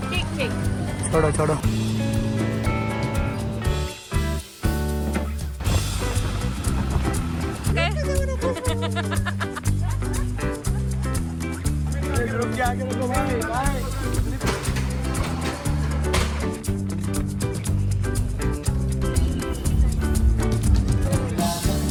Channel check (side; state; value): both; identical; correlation 1.00